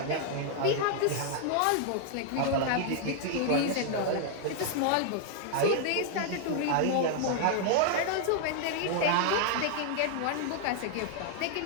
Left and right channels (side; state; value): both; different; correlation 0.00